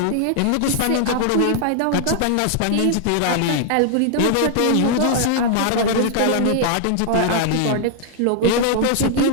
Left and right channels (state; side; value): different; both; correlation 0.00